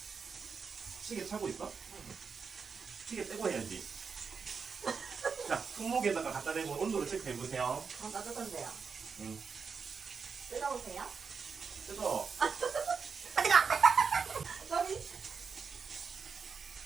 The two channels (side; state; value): left; quieter; 5.6 dB